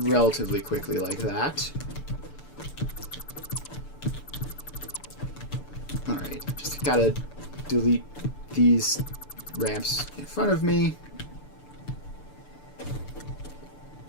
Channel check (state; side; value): late; right; 6.8 ms